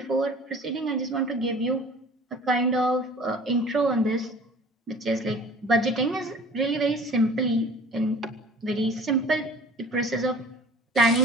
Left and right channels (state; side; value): normal; both; correlation 0.46